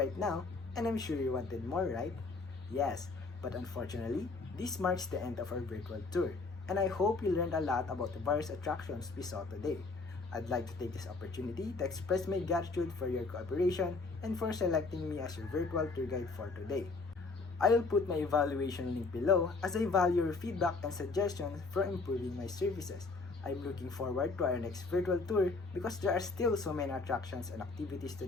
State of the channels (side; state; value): right; quieter; 3.9 dB